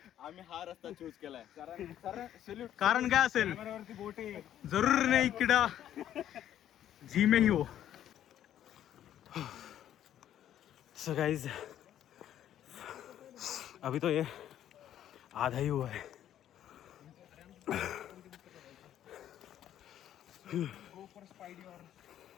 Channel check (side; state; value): right; quieter; 11.2 dB